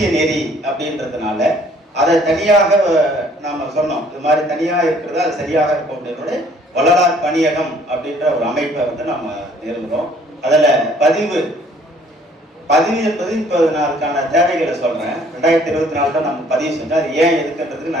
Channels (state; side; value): normal; both; correlation 0.59